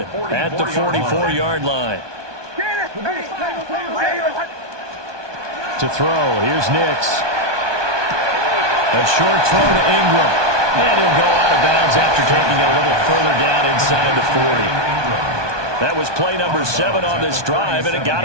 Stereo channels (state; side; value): late; left; 1.2 ms